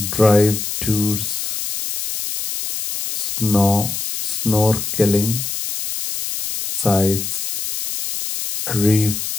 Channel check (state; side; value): noise; left; hiss, 4 dB below the sound